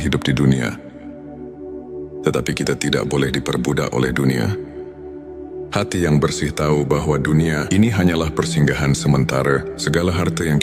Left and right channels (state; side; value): identical; both; correlation 1.00